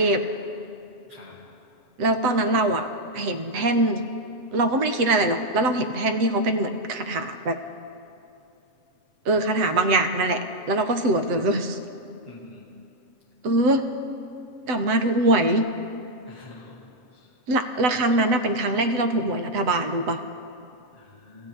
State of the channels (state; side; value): late; left; 7.9 ms